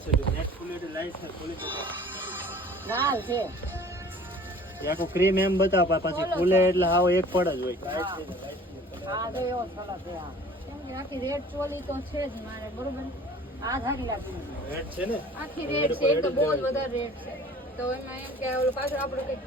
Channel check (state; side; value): normal; both; correlation 0.48